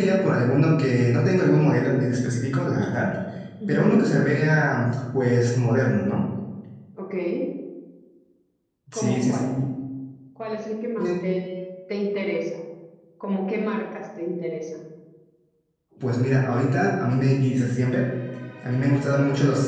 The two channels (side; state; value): both; identical; correlation 1.00